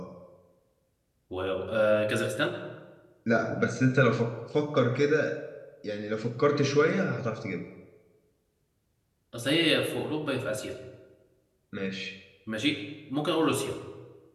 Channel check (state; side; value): identical; both; correlation 1.00